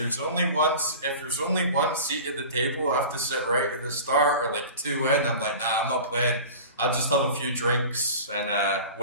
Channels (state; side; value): inverted; both; correlation -0.37